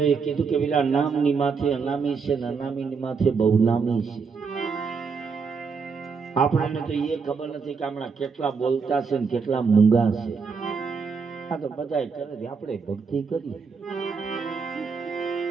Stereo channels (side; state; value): left; quieter; 5.4 dB